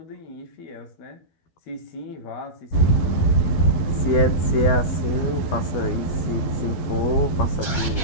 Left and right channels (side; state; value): right; late; 12 ms